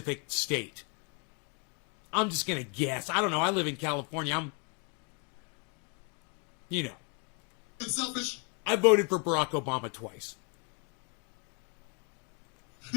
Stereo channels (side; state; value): right; quieter; 33.3 dB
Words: state. I'm just going to guess. I don't know. I live in California. You know. Selfish. I voted for Barack Obama twice.